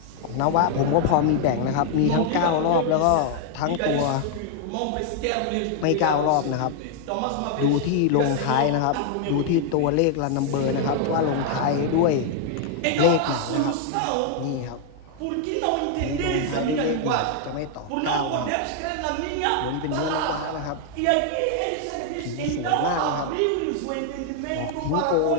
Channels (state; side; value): different; both; correlation 0.00